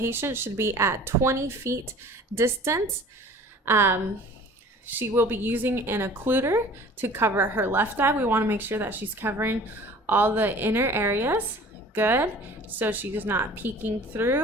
should be at 20 feet distance. She will be using an occluder to cover her left eye. We want to make sure that she's covering all the inner areas. Good. So she's not peeking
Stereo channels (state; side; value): normal; both; correlation 0.46